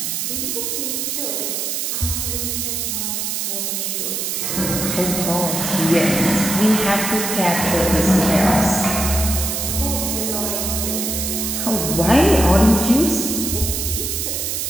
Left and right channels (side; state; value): right; noise; hiss, 1 dB below the sound